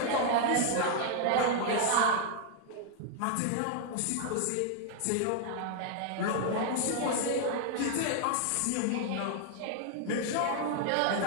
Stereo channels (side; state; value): both; different; correlation 0.00